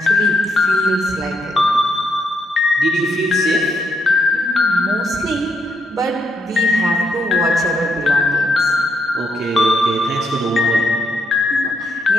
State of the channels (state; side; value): normal; both; correlation 0.77